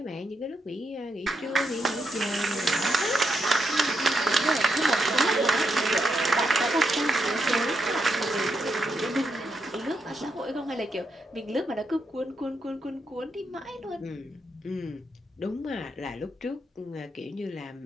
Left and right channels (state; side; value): normal; both; correlation 0.81